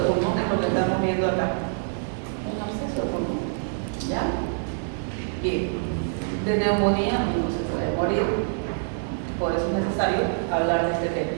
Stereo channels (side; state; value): left; silent; 61 dB below the other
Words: pulmón, es lo que estamos viendo acá. Un absceso de pulmón. ¿Ya? Bien. De neumonía no se puede morir. Por eso es necesario hablar de este tema.